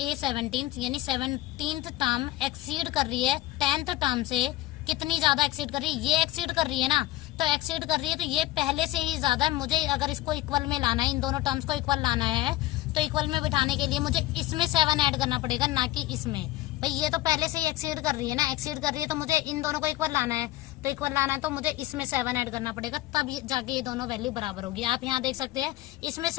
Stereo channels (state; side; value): quieter; right; 16.3 dB